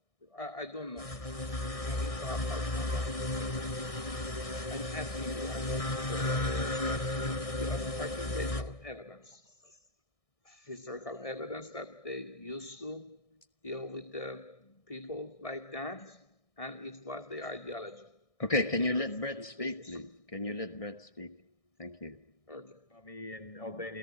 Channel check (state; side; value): late; right; 1.6 ms